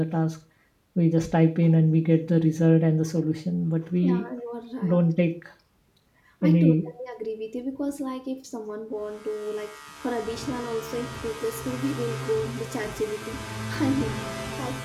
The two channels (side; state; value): both; identical; correlation 1.00